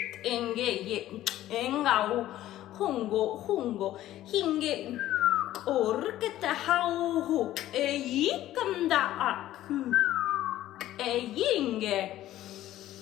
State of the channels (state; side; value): quieter; right; 13.9 dB